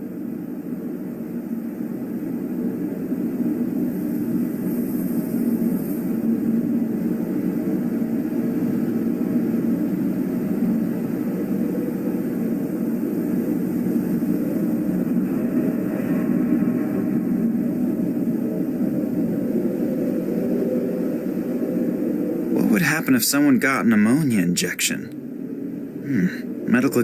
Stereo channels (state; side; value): identical; both; correlation 1.00